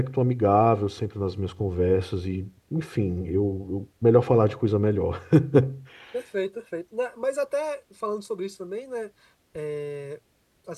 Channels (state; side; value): identical; both; correlation 1.00